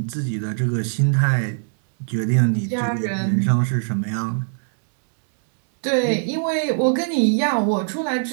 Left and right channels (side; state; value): left; silent; digital silence